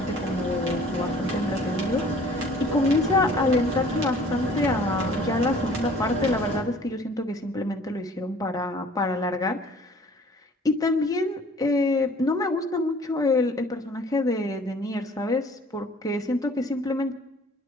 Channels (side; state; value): both; normal; correlation 0.52